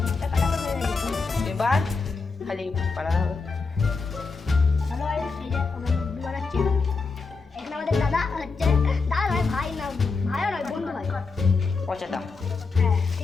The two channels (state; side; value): quieter; right; 4.4 dB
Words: এবার খালি বানানো হবে। আমাদের দাদা হচ্ছে, দাদা নয় ভাই, না ভাইও নয়, বন্ধু ভাই পচাটা। হ্যাঁ